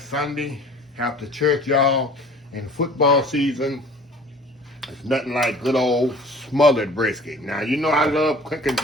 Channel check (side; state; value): both; normal; correlation 0.47